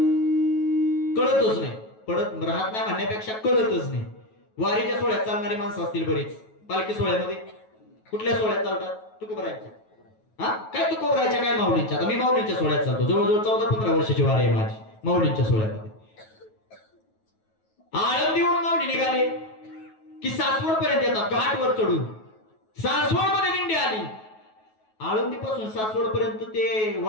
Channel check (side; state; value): right; late; 9.3 ms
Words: कळतच नाही पडत राहत नाही म्हणण्यापेक्षा कळतच नाही वारीच्या सोहळ्यात चालणारी माणसं असतील बरीच पालखी सोहळ्यामध्ये कुठल्या सोहळ्यात चालतात तुकोबरायच्या हा काय तुकोबरायच्या काय माऊलींच्या आता मी माऊलींच्या सोहळ्यात चालतो जवळजवळ 14-15 वर्षाची वारी आहे माझी माऊलींच्या सोहळ्यामध्ये आळंदीवरून माऊली निघाले की सासवड पर्यंत येतात घाटवर चढून सासवड मध्ये दिंडी आली आळंदी पासून सासवड पर्यंत ते